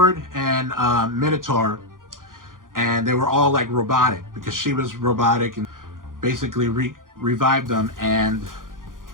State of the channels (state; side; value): late; left; 0.90 ms